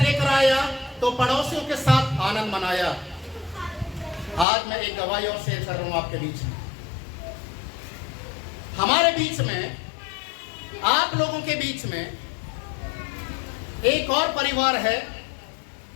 आया तो पड़ोसियों के साथ आनंद मनाया। आज मैं एक गवाही और शेयर कर रहा हूं आपके बीच में। हमारे बीच में, आप लोगों के बीच में एक और परिवार है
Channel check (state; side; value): drops out; right; at 4.5 s